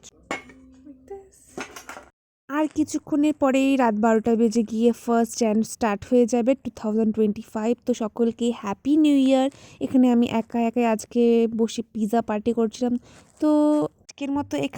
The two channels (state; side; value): identical; both; correlation 1.00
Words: আর কিছুক্ষণের পরেই রাত 12টা বেজে গিয়ে 1 jan স্টার্ট হয়ে যাবে 2025। তো সকলকে হ্যাপি নিউ ইয়ার। এখানে আমি একা একাই আজকে বসে পিৎজা পার্টি করছিলাম। তো আজকের মতো